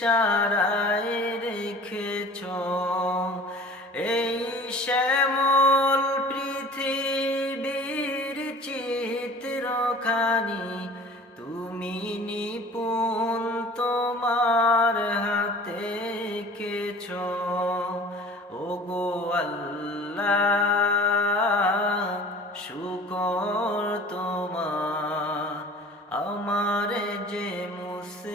রেখেছ এই শ্যামল পৃথিবীর চিত্রখানি তুমি নিপুণ তোমার হাতে এঁকেছ। ওগো আল্লাহ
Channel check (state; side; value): normal; both; correlation 0.44